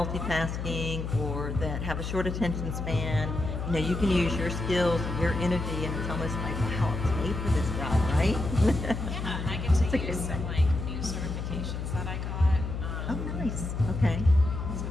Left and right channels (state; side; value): noise; left; hum, 4 dB below the sound